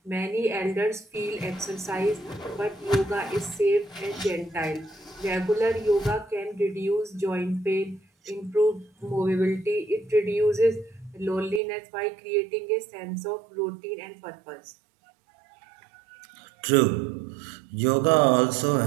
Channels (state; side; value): drops out; left; at 11.6 s